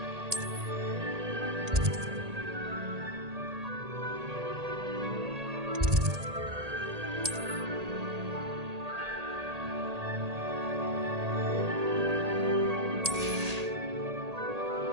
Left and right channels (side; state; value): left; late; 1.8 ms